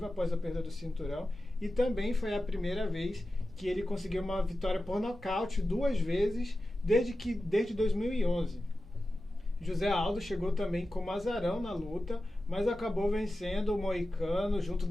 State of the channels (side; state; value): both; normal; correlation 0.93